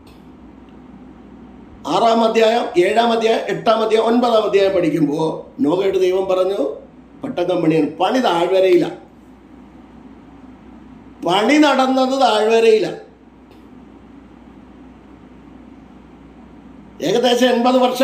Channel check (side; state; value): both; identical; correlation 1.00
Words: 6-ാം അധ്യായം, 7-ാം അധ്യായം, 8-ാം അധ്യായം, 9-ാം അധ്യായം പഠിക്കുമ്പോൾ നോഹയുടെ ദൈവം പറഞ്ഞു പെട്ടകം പണിയാണ്. പണി താഴ്വരയിലാണ്. പണി നടന്നത് താഴ്വരയിലാണ്. ഏകദേശം 80